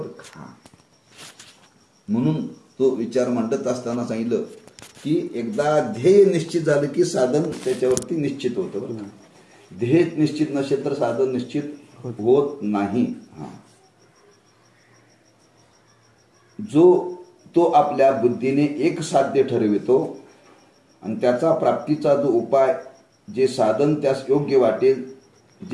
का. म्हणून तो विचार मांडत असताना सांगितलं की एकदा ध्येय निश्चित झालं की साधन त्याच्यावरती निश्चित होतं बरं का. ध्येय निश्चित नसेल तर साधन निश्चित होत नाही. जो तो आपल्या बुद्धीने एक साध्य ठरवितो आणि त्याचा प्राप्तीचा जो उपाय, जे साधन त्यास योग्य वाटेल,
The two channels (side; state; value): both; identical; correlation 1.00